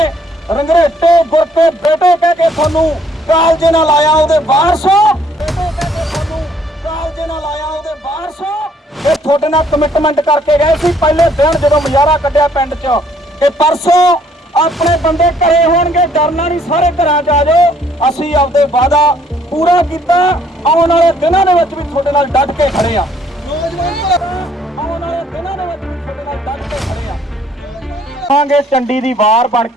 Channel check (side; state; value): both; normal; correlation 0.64